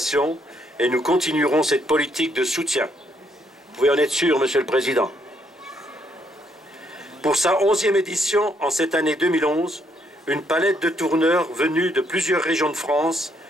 et nous continuerons cette politique de soutien. Vous pouvez en être sûr, Monsieur le Président. Pour sa 11e édition, en cette année 2011, une palette de tourneurs venus de plusieurs régions de France,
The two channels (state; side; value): normal; both; correlation 0.72